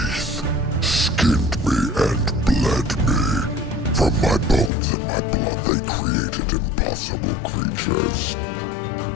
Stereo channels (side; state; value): right; drops out; at 4.7 s